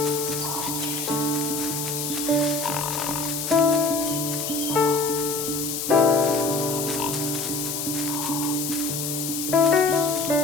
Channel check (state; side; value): noise; left; hiss, 3 dB below the sound